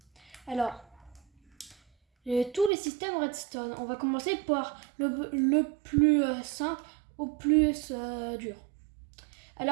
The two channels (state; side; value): drops out; left; at 2.7 s